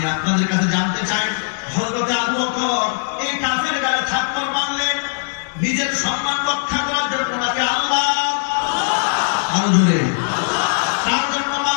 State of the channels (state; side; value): silent; right; digital silence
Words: আপনাদের কাছে জানতে চাই, হযরত আবু বকর এই কাফের গায়ে থাপ্পড় মারলেন নিজের সম্মান রক্ষা করার জন্য নাকি আল্লাহ আরো জোরে তার জন্য